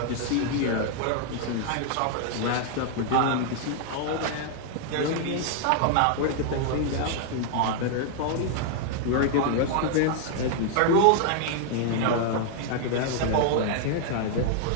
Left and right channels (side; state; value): both; different; correlation 0.00